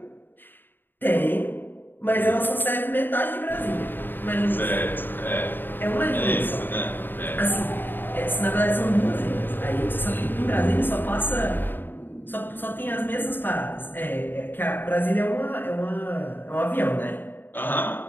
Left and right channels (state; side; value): late; right; 0.094 ms